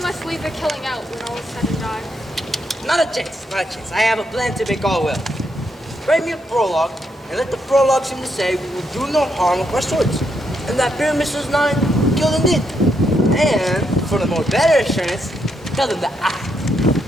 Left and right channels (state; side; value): normal; both; correlation 0.78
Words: must leave the killing out when all is said and done. Not a chance. I have a plan to make all well. Write me a prologue, and let the prologue seem to say we will do no harm with our swords, and that Pyramus was not killed indeed. And, for the more better assurance, tell them that I,